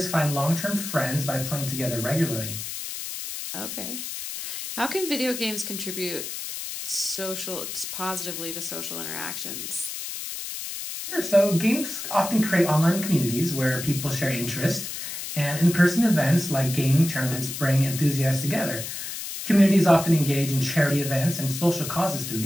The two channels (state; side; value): noise; left; hiss, 7 dB below the sound